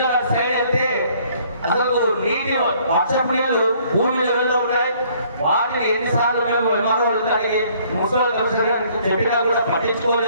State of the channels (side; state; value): both; inverted; correlation -0.61